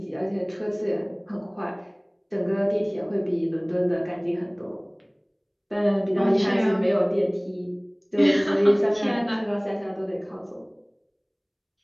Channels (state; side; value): identical; both; correlation 1.00